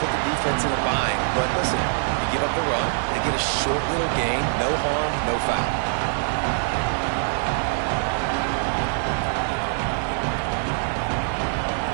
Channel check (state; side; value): silent; left; 63 dB below the other